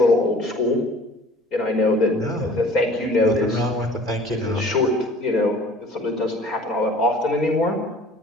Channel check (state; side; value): normal; both; correlation 0.48